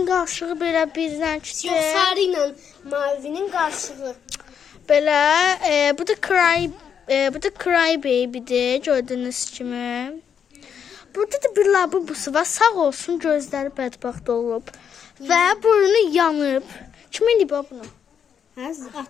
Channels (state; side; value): quieter; right; 7.7 dB